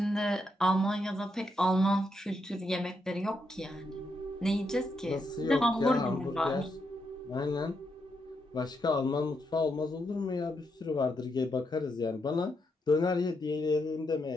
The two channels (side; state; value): both; normal; correlation 0.81